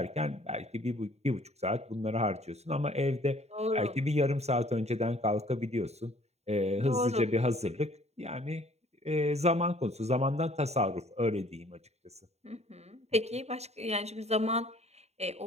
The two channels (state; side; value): late; left; 0.31 ms